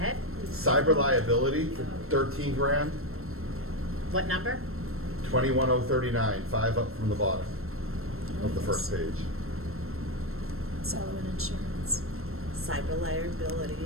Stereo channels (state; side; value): late; left; 0.62 ms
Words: Cyber liability for 13 grand, What number? 21039, 5 up from the bottom of the first page. Sullivan Insurance. Cyber